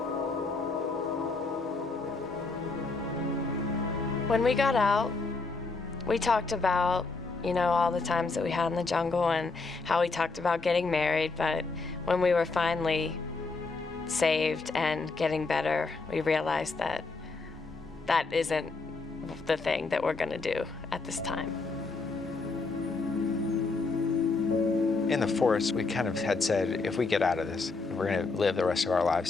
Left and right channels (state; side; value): quieter; right; 3.9 dB